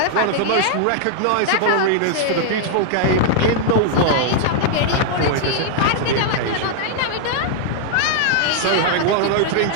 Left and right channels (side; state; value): both; different; correlation 0.00